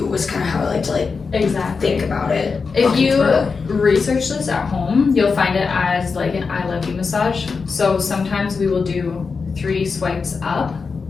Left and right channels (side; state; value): right; quieter; 4.9 dB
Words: was kind of how I like to like exactly think about it. If you research this at home, you'll find it as like an ILU massage. So sometimes we will do 3 swipes up